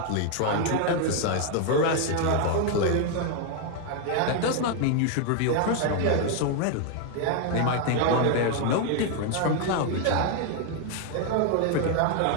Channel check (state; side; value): different; both; correlation 0.00